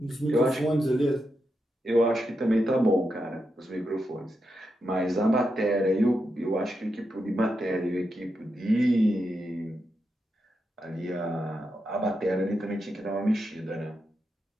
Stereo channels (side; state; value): both; normal; correlation 0.86